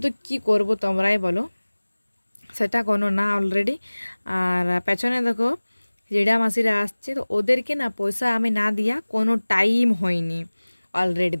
কি করব তোমরাই বলো, সেটা কোনো না অলরেডি। আর পেছনে দেখো জেঠা মাসিরা আসছে, তো ওদেরকে না পয়সা আমি না দিয়া কোনো টাইম হয়নি। অলরেডি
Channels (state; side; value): inverted; both; correlation -1.00